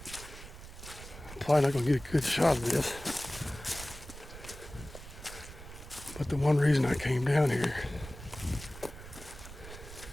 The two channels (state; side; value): noise; right; rumble, 14 dB below the sound